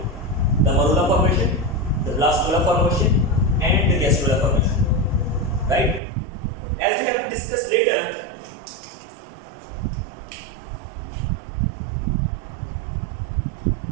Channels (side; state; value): left; drops out; at 6.0 s